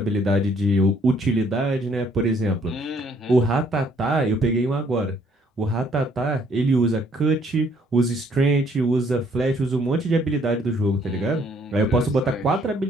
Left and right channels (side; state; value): both; normal; correlation 0.64